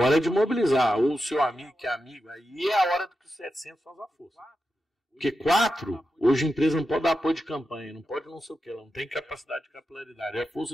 é de mobilizar. Ou o seu amigo que é amigo. Aí é a hora que os 700 faz a força. Porque 4, hoje a empresa não pode dar apoio de campanha, não pode não sei o que, ela não tem capacidade de capilaridade. A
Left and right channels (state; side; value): normal; both; correlation 0.89